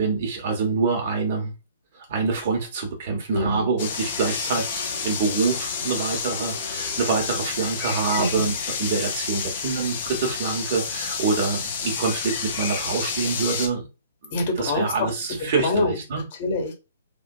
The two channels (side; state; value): both; inverted; correlation -0.50